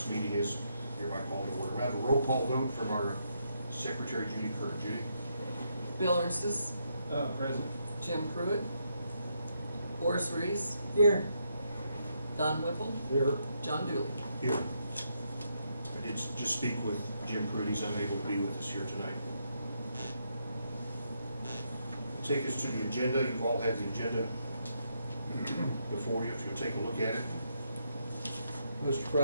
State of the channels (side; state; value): both; inverted; correlation -0.78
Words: meeting is hereby called to order. We have a roll call vote from our Secretary, Judy Kerr. Judy? Bill Ernstes. Present. Jim Pruitt. Horace Reese. Here. Don Whipple. Here. John Dooley. Here. I did just speak with Jim Pruitt. He's unable to be with us here tonight. Take us to the agenda. You've all had the agenda before you, if you'll take a look at it. Mr.